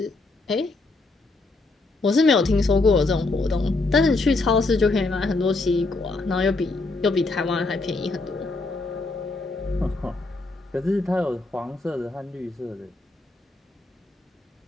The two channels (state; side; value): quieter; right; 3.3 dB